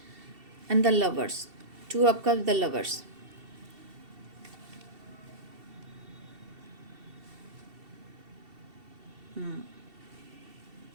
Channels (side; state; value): left; late; 2.7 ms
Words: And the lovers, 2 of cups, the lovers.